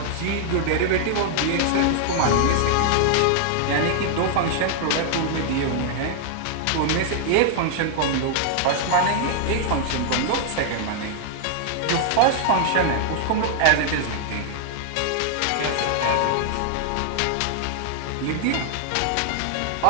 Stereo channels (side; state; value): both; different; correlation -0.01